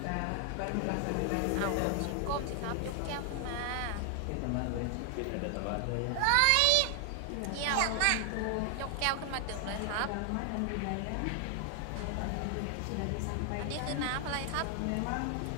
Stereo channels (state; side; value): different; both; correlation 0.00